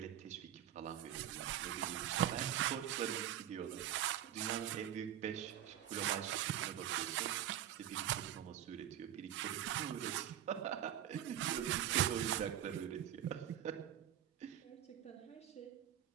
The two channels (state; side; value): quieter; left; 11.1 dB